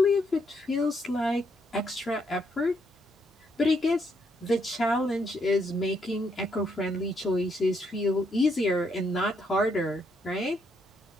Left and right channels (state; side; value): normal; both; correlation 0.75